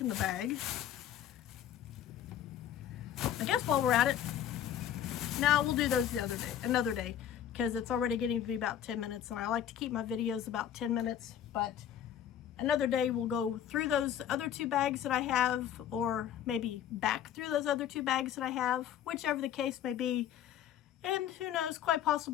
the bag. I guess while we're at it, now we'll do those another day, because it's already getting to be about 10 minutes, and I like to keep my videos about 10 minutes, but another day we'll go through those other 2 bags that I have, or maybe back through those other 2 bags that I have, whichever the case may be. And who knows, quite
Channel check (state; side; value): quieter; right; 10.2 dB